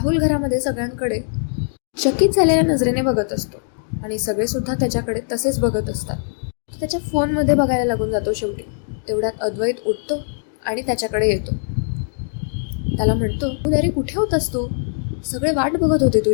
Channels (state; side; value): silent; right; digital silence